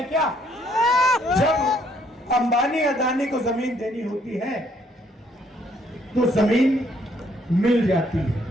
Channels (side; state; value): both; normal; correlation 0.67